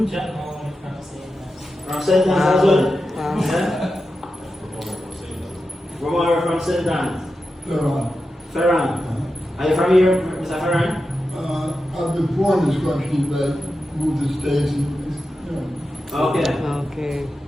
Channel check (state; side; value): normal; both; correlation 0.90